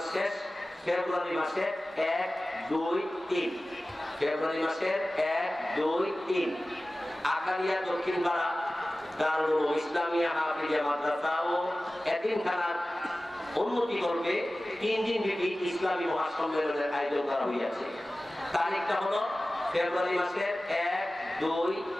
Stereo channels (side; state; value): both; normal; correlation 0.96